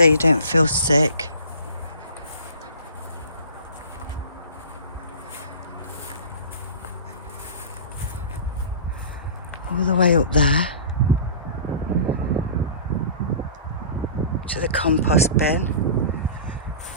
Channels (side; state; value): both; inverted; correlation -0.39